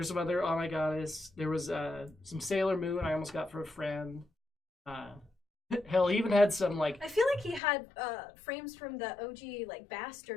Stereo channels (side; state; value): right; drops out; at 7.6 s